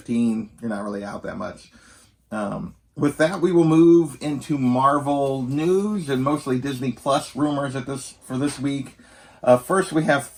you're not really out that much. With that, we will move into Marvel news and mostly Disney Plus rumors for this week. First, we have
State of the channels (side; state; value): both; identical; correlation 1.00